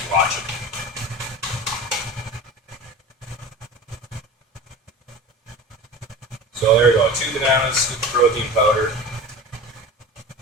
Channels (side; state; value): both; normal; correlation 0.34